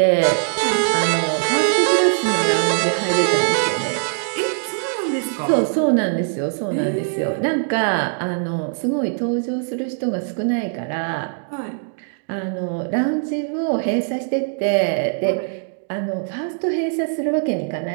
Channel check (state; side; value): silent; left; digital silence